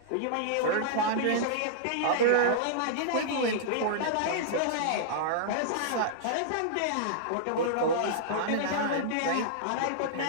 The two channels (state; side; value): different; both; correlation -0.02